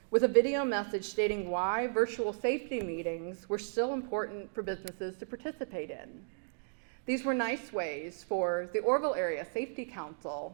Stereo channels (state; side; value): silent; left; digital silence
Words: with a video message stating why virtual safety meetings were still important for businesses to participate in. These were nice ways for the Orville Area Safety